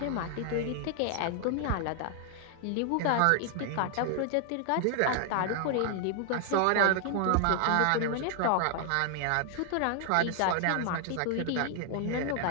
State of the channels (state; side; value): different; both; correlation 0.00